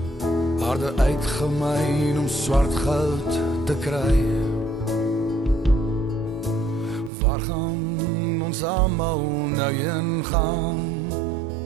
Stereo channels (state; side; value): drops out; left; at 7.1 s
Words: Aarde uitgemyn om swart goud te kry. Waar gaan ons almal nou heen gaan?